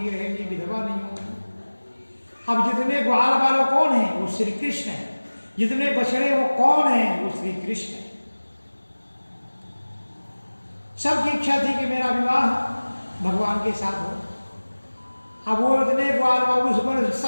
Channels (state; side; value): inverted; both; correlation -1.00